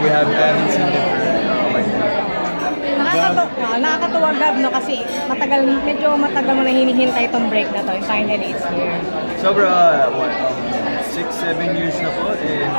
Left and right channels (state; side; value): inverted; both; correlation -1.00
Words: haven't seen them for a while. Nakakatuwa, Gab, no? Kasi medyo matagal mo na hinihintay itong break na to. And finally, it's here. Sobra, 6-7 years na po and